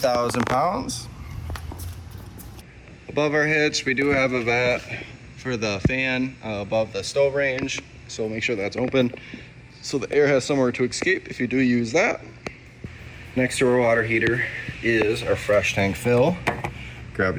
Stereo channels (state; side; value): identical; both; correlation 1.00